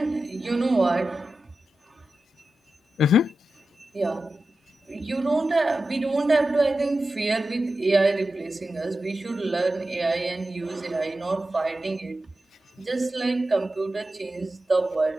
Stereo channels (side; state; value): both; normal; correlation 0.92